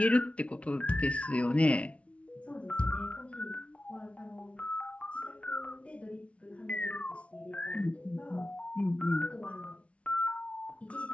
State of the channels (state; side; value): late; right; 0.062 ms